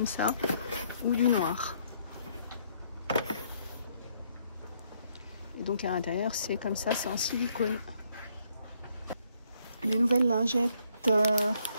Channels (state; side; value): inverted; both; correlation -0.70